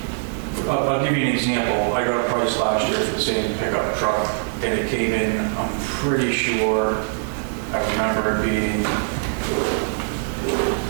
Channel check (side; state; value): left; silent; 64 dB below the other